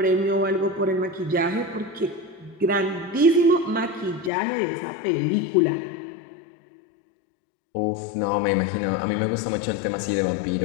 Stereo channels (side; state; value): right; drops out; at 4.3 s